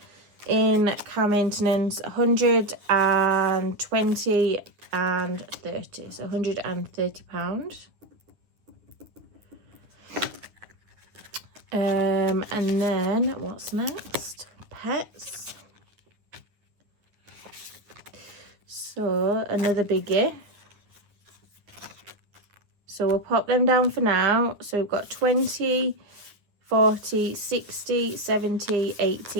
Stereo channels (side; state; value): left; late; 9.7 ms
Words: in car maintenance 120 and 30. So £130. And then what's next? Pets. So another biggie. So we'll pop them down for now. So we've got 20, 40, 60, 70,